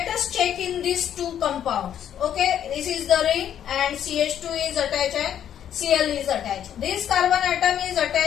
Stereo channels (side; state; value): right; quieter; 9.9 dB